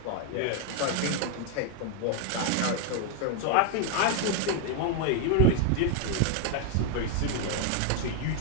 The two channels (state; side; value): different; both; correlation 0.00